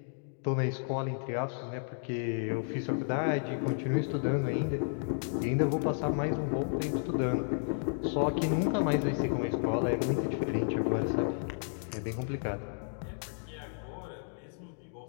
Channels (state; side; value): silent; right; digital silence